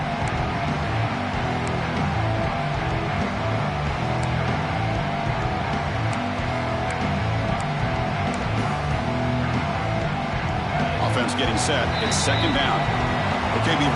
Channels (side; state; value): both; identical; correlation 1.00